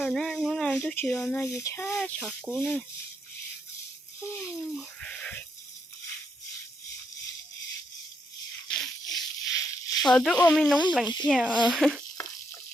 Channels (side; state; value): both; normal; correlation 0.77